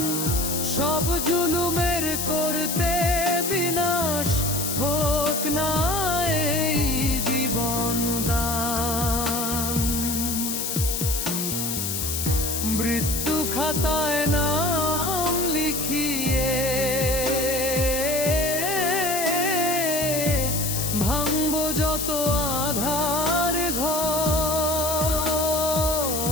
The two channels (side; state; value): left; noise; hiss, 2 dB below the sound